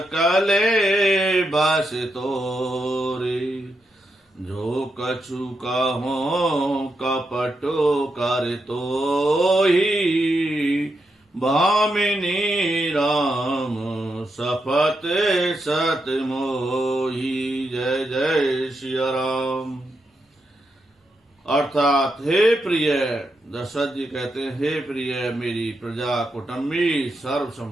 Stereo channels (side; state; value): both; normal; correlation 0.84